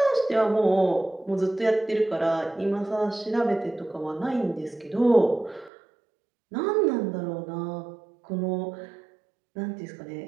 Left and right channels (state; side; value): drops out; left; at 5.7 s